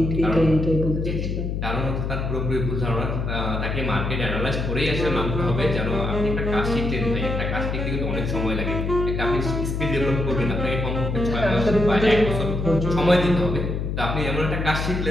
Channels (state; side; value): noise; left; hum, 2 dB below the sound